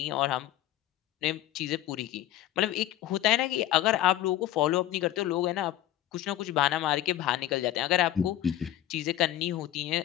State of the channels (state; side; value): quieter; right; 13.3 dB